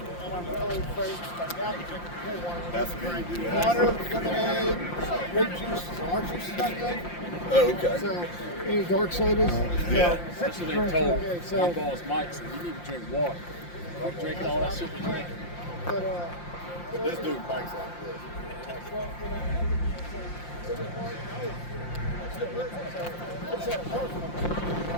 And I'm really afraid to start out and drink more water. That's me. Water, lemonade, grape juice. Our juice is not good. Oh, okay. So, any dark sodas? Yeah. That's what they told my boss Mike. Said you need to drink water. Like drinking all that shit you drink. But This dude Mike's like this.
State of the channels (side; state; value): right; late; 5.7 ms